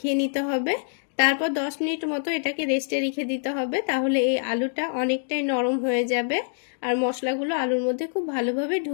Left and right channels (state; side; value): silent; right; digital silence